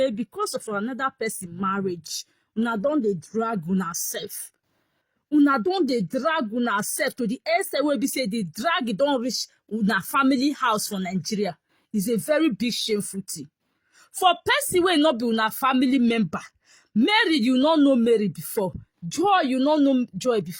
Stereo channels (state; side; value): identical; both; correlation 1.00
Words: because of another person marriage, una don dey drag una self. Una don dey drag una self to the extent where be say the drag don reach una family house for Nigeria. It's a very big shameful thing. For person wey not be una family member, Mary, you not know Mary before. Joy, you not know Joy